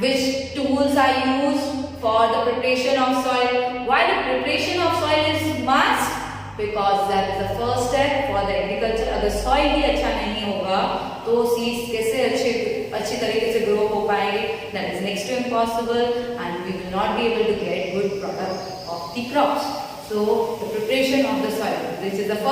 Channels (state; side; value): identical; both; correlation 1.00